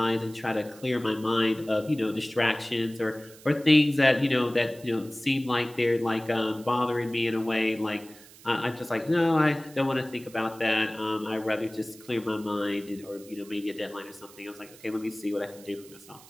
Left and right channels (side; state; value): right; noise; hiss, 21 dB below the sound